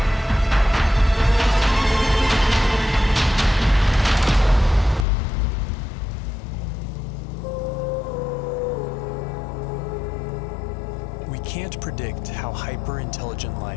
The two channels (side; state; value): right; drops out; at 5.1 s